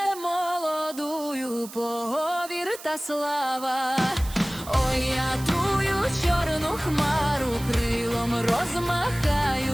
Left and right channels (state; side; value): noise; right; hiss, 15 dB below the sound